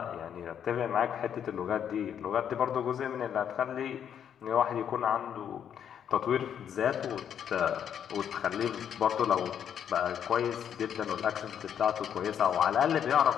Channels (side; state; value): right; quieter; 8.8 dB